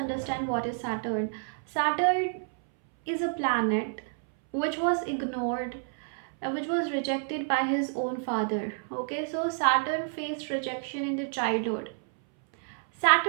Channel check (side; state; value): left; silent; 58 dB below the other